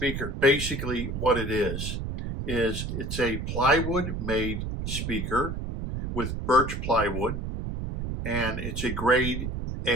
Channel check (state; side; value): noise; right; rumble, 4 dB below the sound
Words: basically what it is it's a plywood made speaker with birch plywood, and it's a grade